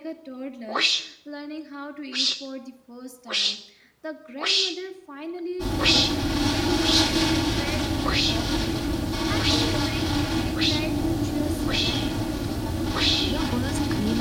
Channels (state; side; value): identical; both; correlation 1.00